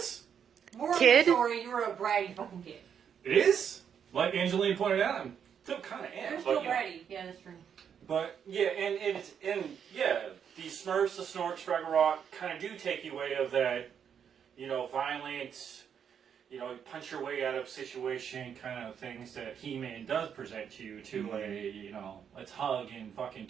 Moral of Kid? the story, you were a bratty fucking kid. It is? Like Angeline pointed out, I'm still kind of am. You're but, still you know. bratty. Yeah, that's true. But yeah, and the Smurfs, the Snorks, Fraggle Rock kind of do take you away of that, you know, violent, you know, punch your way out of situation kind of things that He-Man does present you to a, you know, let's hug and fucking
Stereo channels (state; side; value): quieter; left; 7.9 dB